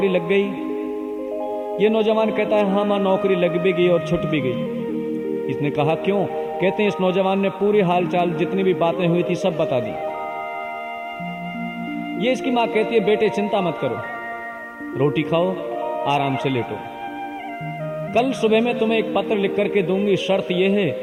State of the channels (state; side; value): identical; both; correlation 1.00